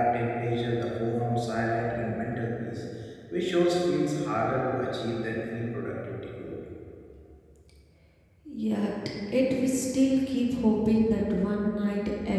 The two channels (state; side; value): identical; both; correlation 1.00